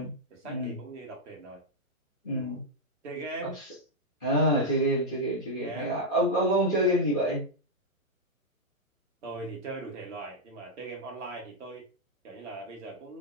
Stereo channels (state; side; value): normal; both; correlation -0.03